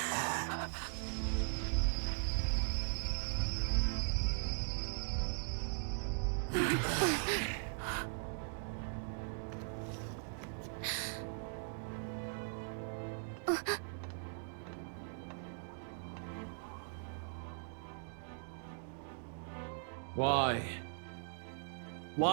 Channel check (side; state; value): left; silent; digital silence